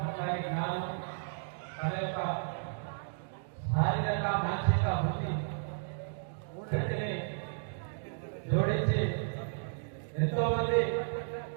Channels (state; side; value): silent; left; digital silence